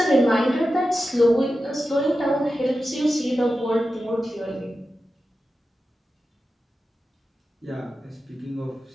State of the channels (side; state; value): both; normal; correlation 0.92